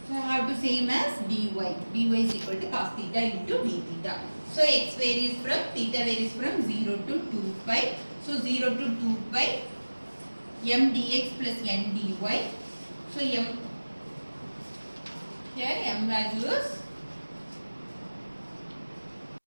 So I have to same as dy. dy is equal to cos theta into d theta. So x varies from, theta varies from 0 to 2 pi. So 0 to 2 pi m dx plus n dy. So m, here m value is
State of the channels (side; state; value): both; inverted; correlation -1.00